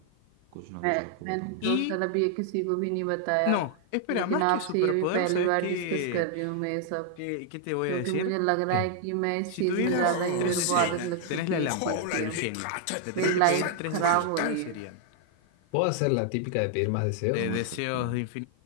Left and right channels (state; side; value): different; both; correlation 0.00